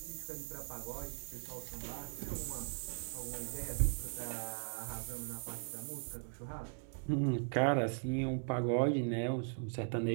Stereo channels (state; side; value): silent; left; digital silence